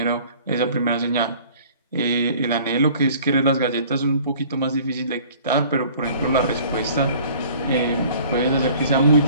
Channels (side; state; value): both; inverted; correlation -0.50